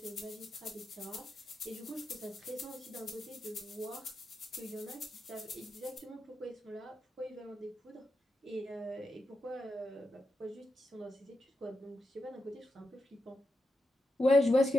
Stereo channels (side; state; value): both; normal; correlation 0.87